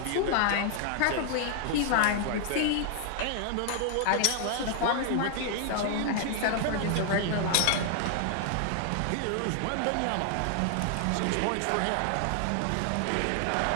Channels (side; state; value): both; different; correlation 0.00